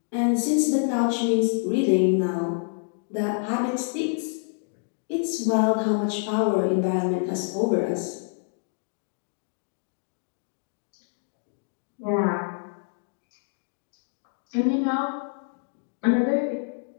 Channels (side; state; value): right; silent; digital silence